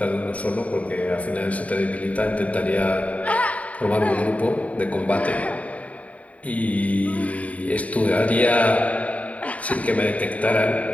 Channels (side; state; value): right; late; 0.068 ms